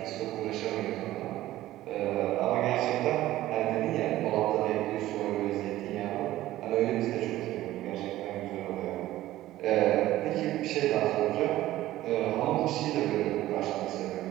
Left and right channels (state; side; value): quieter; left; 15.2 dB